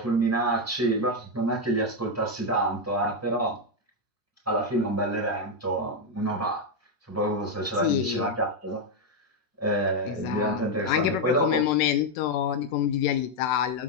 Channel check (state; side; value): normal; both; correlation 0.03